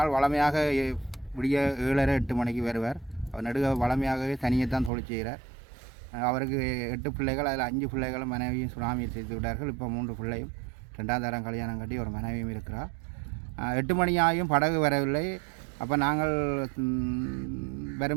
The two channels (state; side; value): drops out; left; at 4.9 s